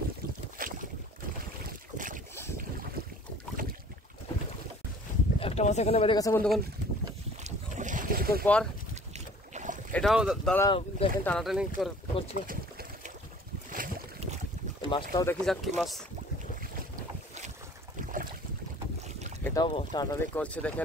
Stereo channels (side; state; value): both; normal; correlation 0.50